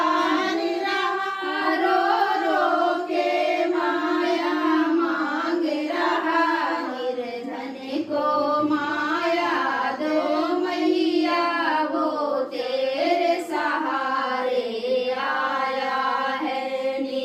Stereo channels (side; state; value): both; identical; correlation 1.00